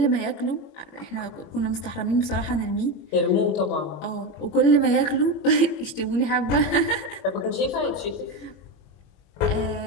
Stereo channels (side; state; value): right; late; 21 ms